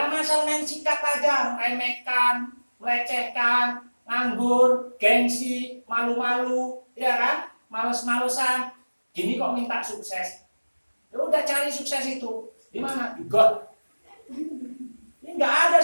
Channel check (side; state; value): both; inverted; correlation -1.00